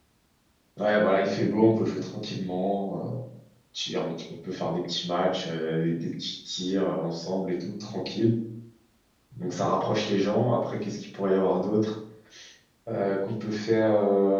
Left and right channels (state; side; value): identical; both; correlation 1.00